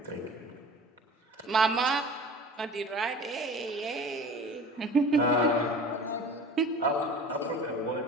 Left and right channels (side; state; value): both; normal; correlation 0.40